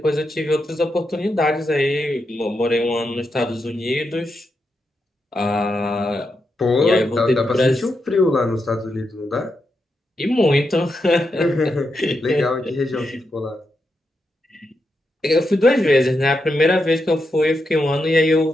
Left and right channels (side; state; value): both; normal; correlation 0.85